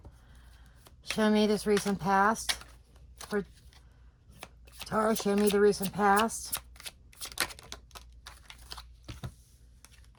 Show me this recent past. For Taurus, show me the recent past.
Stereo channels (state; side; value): identical; both; correlation 1.00